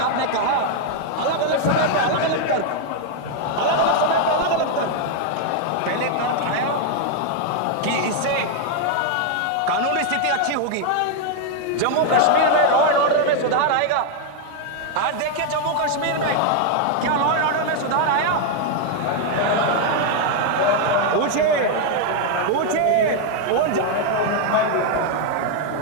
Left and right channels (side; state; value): both; different; correlation 0.00